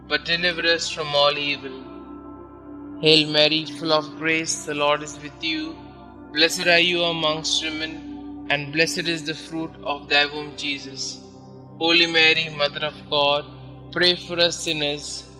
but deliver us from all evil. Hail Mary, full of grace, the Lord is with you. Blessed are you amongst women, and blessed is the fruit of thy womb, Jesus. Holy Mary, Mother of God, pray for us sinners,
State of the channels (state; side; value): identical; both; correlation 1.00